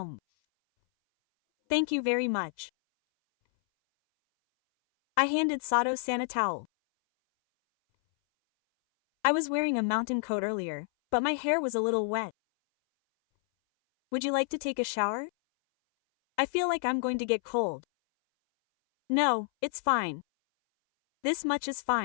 Thank you very much. I handed Sato-san a towel. I was wearing a mountain coat earlier, but my hair was a little wet. Would you like to take a shower? I feel like I'm going to get cold. No, it's fine. This much is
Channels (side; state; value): right; silent; 58 dB below the other